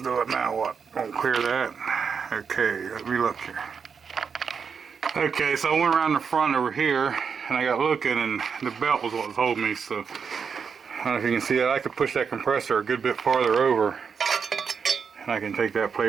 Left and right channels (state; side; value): quieter; left; 6.2 dB